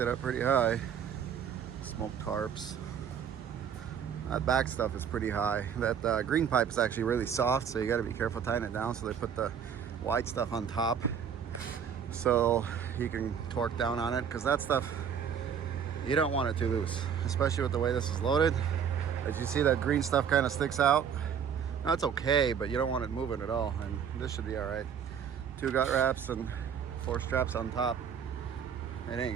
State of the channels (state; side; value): quieter; left; 7.7 dB